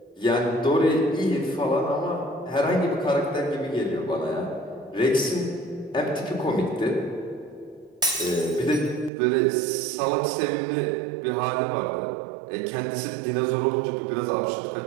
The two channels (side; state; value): left; drops out; at 9.1 s